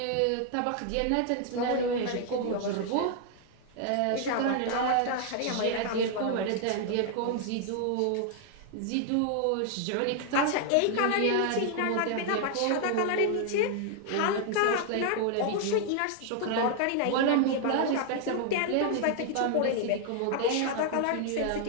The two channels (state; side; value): different; both; correlation 0.00